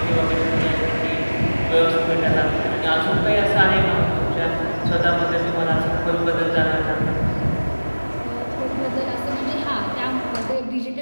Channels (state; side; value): inverted; both; correlation -1.00